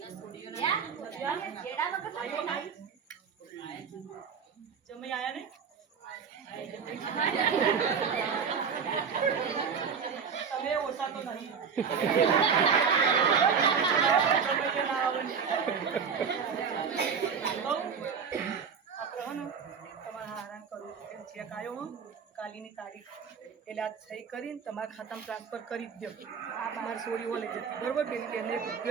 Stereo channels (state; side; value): quieter; left; 6.4 dB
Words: જમી આયા ને તમે ઓછા તો નહીં જમીને ના આવવાની. આપણે હો ને તમારે હેરાન કરવું એમ ચેક આવ્યો હો કાલીની તારીખ એટલે આ સહી કરીને તમારા ખાતામાં ટ્રાન્સફર કરી જ દો. આ તમારી સોરી હો લઈ જતી બરોબર પેલી બેનને